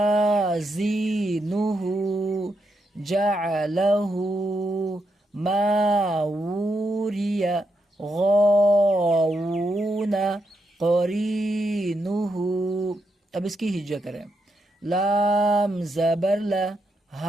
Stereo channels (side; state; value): both; normal; correlation 0.82